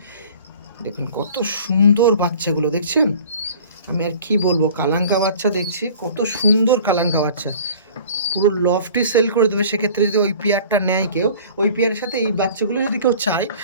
দেখুন কত সুন্দর বাচ্চাগুলো, দেখছেন? আমি আর কি বলবো, কালাঙ্কা বাচ্চা দেখছি, কত সুন্দর কালাঙ্কা বাচ্চা, পুরো লফটি সেল করে দেবে। সেক্ষেত্রে যদি ওই পেয়ারটা নেয় কেউ, ওই পেয়ারের সাথে এই বাচ্চাগুলো যদি কেউ চায়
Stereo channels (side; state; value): both; inverted; correlation -0.46